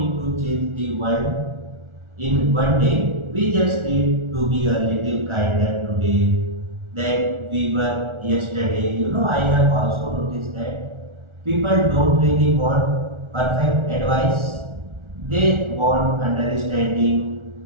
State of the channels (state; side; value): late; left; 1.4 ms